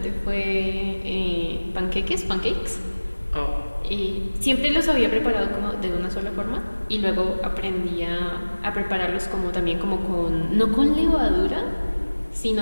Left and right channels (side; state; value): both; inverted; correlation -1.00